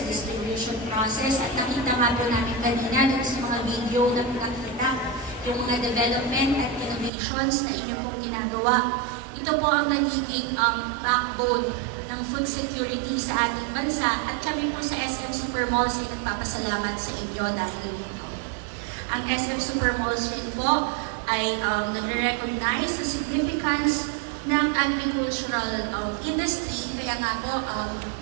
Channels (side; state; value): left; drops out; at 7.1 s